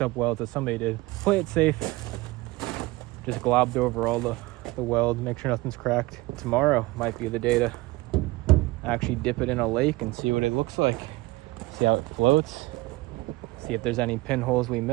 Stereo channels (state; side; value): quieter; left; 21.0 dB